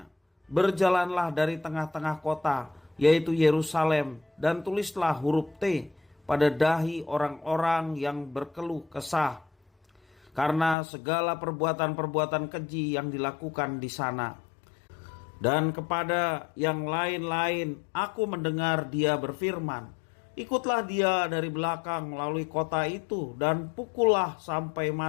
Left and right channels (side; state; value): right; drops out; at 10.8 s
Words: "Berjalanlah dari tengah-tengah kota, yaitu Yerusalem, dan tulislah huruf T pada dahi orang-orang yang berkeluh kesah, karena segala perbuatan-perbuatan keji yang dilakukan di sana." Dan kepada yang lain-lain aku mendengar dia berfirman, "Ikutlah dia dari belakang melalui kota itu dan pukullah sampai